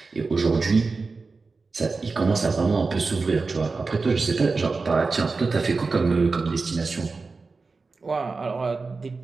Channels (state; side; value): quieter; left; 4.1 dB